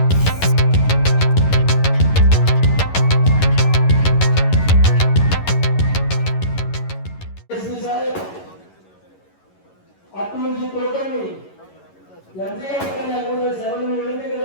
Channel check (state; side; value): late; right; 11 ms